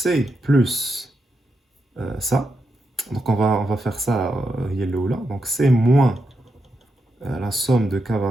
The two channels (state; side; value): normal; both; correlation 0.85